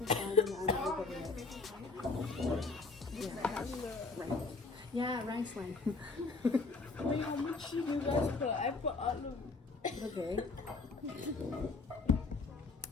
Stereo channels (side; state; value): right; quieter; 3.9 dB